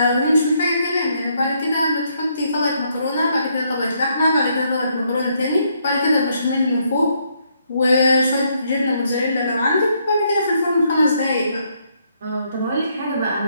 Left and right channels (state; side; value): inverted; both; correlation -0.73